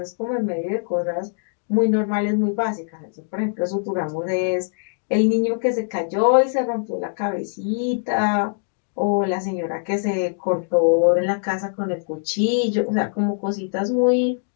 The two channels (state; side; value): silent; right; digital silence